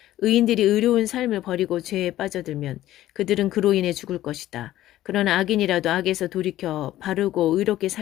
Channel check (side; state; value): right; quieter; 14.2 dB